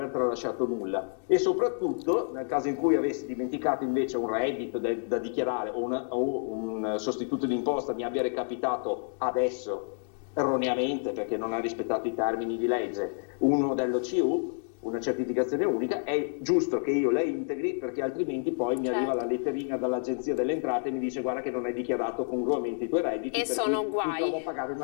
tralasciato nulla. E soprattutto, nel caso in cui avessi dimenticato invece un reddito da dichiarare o un sostituto di imposta mi abbia recapitato adesso erroneamente perché non ha rispettato i termini di legge, un modello CU, una certificazione unica, è giusto che io la integri, perché altrimenti poi mi arriva la letterina dall'Agenzia delle Entrate e mi dice guarda che non hai dichiarato congruamente i tuoi redditi e sono guai. Mi trovo a pagare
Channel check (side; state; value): right; silent; digital silence